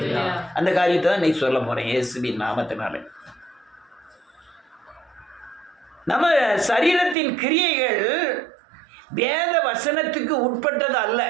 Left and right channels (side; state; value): left; drops out; at 7.2 s